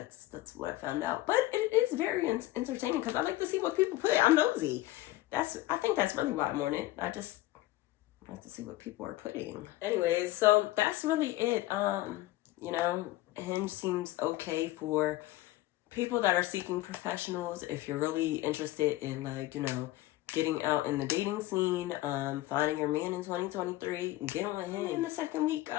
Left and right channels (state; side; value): quieter; right; 17.0 dB